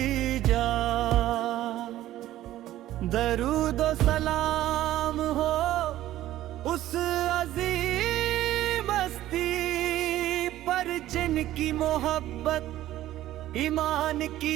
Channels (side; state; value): left; quieter; 14.1 dB